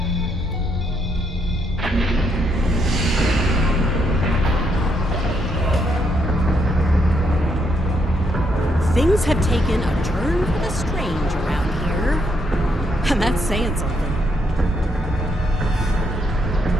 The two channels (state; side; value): normal; both; correlation 0.76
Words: Things have taken a turn for the strange around here. And that's saying something.